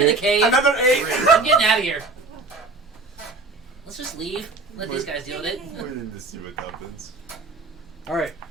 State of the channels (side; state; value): left; quieter; 3.5 dB